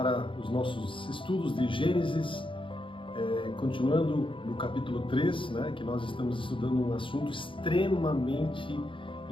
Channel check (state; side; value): late; right; 0.25 ms